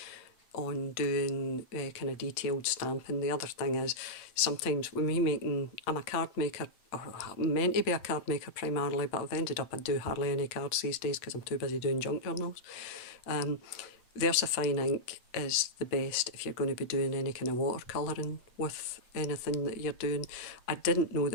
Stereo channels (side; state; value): right; late; 8.7 ms